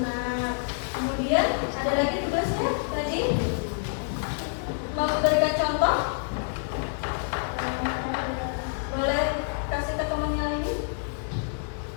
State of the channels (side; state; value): right; silent; digital silence